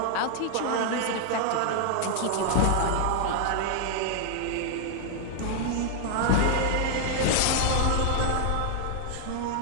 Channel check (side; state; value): both; different; correlation 0.00